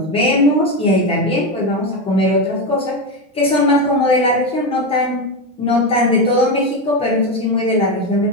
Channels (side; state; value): both; normal; correlation 0.13